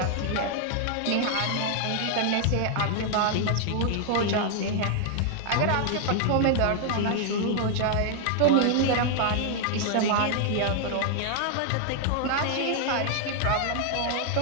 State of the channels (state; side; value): different; both; correlation 0.00